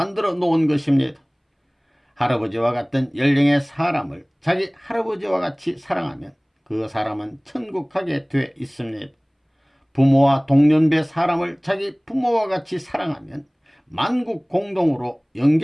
놓은 것입니다. 할아버지와 같은 연령의 사람을 자기 할아버지와 같이 사랑하면 그 사람은 천국 가게 돼 있습니다. 부모와 동년배 사람을 자기 부모와 같이 사랑하면 만국 공동으로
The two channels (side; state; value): both; identical; correlation 1.00